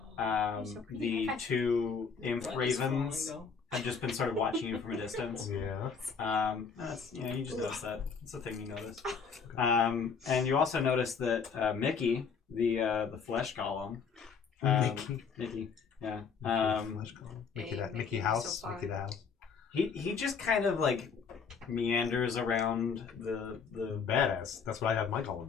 the 2 imp ravens have just been sort of watching you from a distance. Yeah. That's, you just noticed that. It's a thing you notice. And you also notice that Mickey, the flesh golem, Mickey, yeah. Mickey, that Mickey, Mickey you're house. so fine. Mickey the house. He just kind of like meanders around the Badass. That's what I have my column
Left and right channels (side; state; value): right; quieter; 5.9 dB